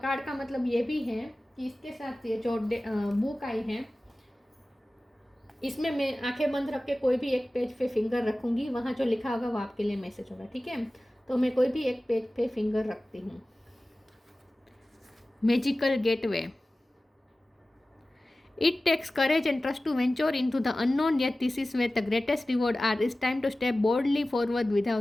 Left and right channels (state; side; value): normal; both; correlation 0.96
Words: का मतलब ये भी है कि इसके साथ ये जो बुक आई है इसमें मैं आंखें बंद रख के कोई भी एक पेज पे फिंगर रखूंगी, वहाँ जो लिखा होगा वो आपके लिए मैसेज होगा, ठीक है। तो मैं कोई भी एक पेज पे फिंगर रखती हूँ। Magical gateway. It takes courage and trust to venture into the unknown, yet this is where the greatest reward are. It's time to step boldly forward